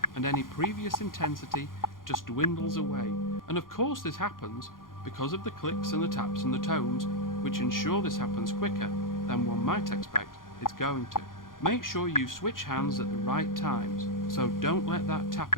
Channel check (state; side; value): late; right; 0.90 ms